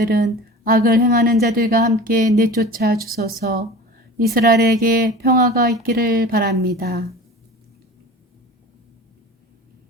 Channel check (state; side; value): normal; both; correlation 0.38